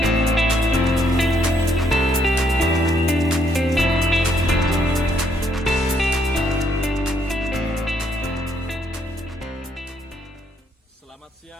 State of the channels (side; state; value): both; normal; correlation 0.72